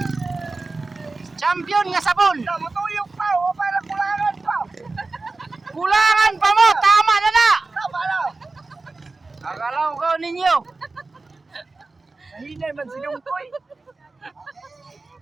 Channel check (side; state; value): left; quieter; 3.6 dB